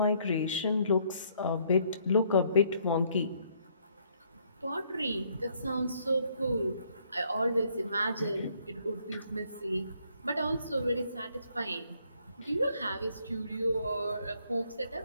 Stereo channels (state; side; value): inverted; both; correlation -0.67